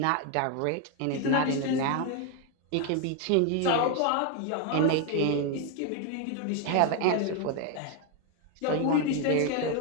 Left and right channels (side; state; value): both; different; correlation 0.01